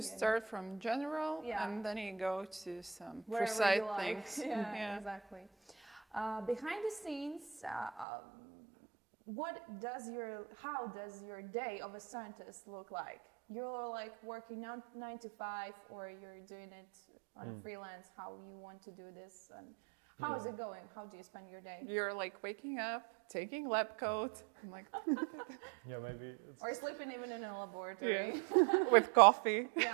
start from general, and then you go to some wherever precise like. things. Exactly. Behind the scenes, how does your day of a scientist look like? You're like working 9 to 5, or you're doing it on freelance? How you want to do this, and how is it going? How do you spend your day? You're like waking up, taking lab coat, I'm like maybe. Or sleeping even in a laboratory. With coffee.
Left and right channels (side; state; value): left; drops out; at 8.1 s